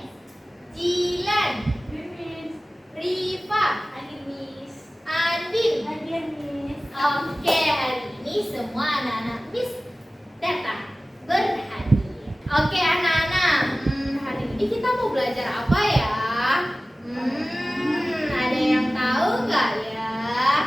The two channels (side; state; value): both; normal; correlation 0.97